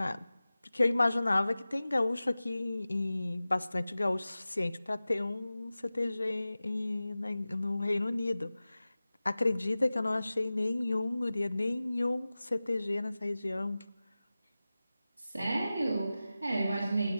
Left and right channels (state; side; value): inverted; both; correlation -0.96